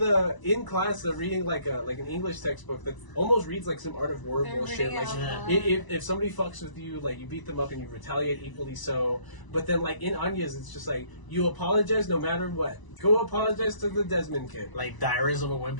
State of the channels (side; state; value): right; late; 1.0 ms